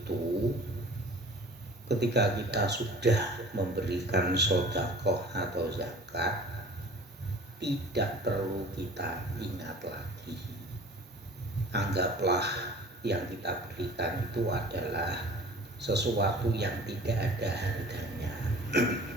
ketika kita sudah memberikan sedekah atau zakat, tidak perlu kita ingat lagi. Anggaplah yang kita berikan itu adalah sesuatu yang tidak ada harganya.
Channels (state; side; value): normal; both; correlation 0.44